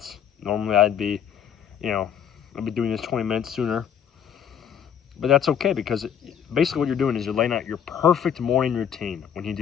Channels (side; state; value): right; quieter; 8.6 dB